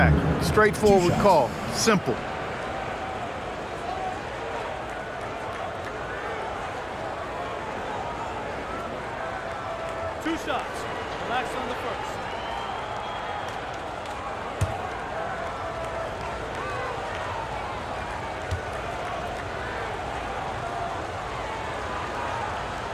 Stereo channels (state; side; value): identical; both; correlation 1.00